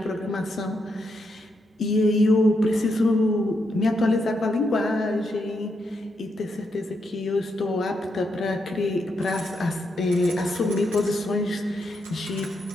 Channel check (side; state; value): both; normal; correlation 0.81